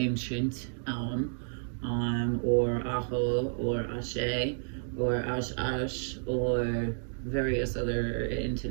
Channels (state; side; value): silent; left; digital silence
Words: or Aho or Ashe or Ash or various other